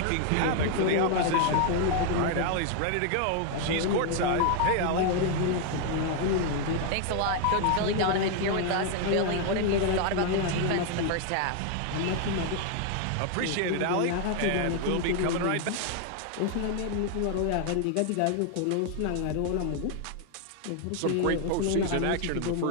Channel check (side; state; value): both; different; correlation 0.00